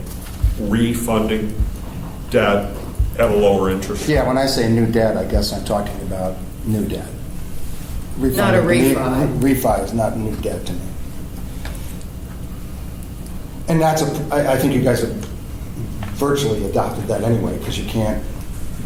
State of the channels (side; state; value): both; identical; correlation 1.00